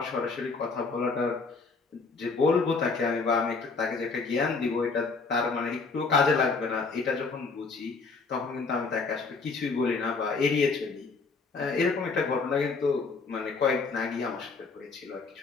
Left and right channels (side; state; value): right; quieter; 4.3 dB